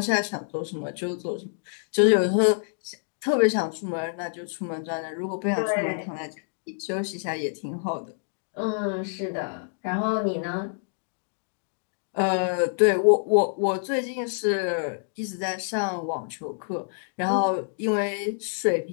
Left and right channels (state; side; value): silent; right; digital silence